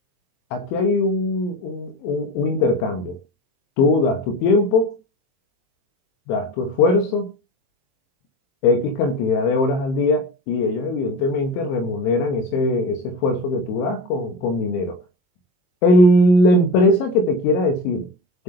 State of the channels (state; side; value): late; right; 23 ms